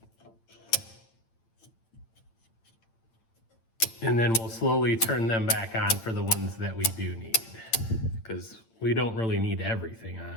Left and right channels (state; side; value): late; right; 8.9 ms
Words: And then we'll slowly turn them back on for the ones that we do need, because we don't really need everything